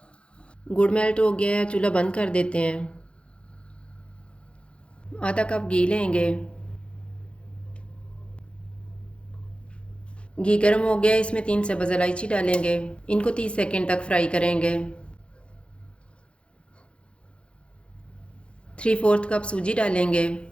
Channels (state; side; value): late; right; 0.058 ms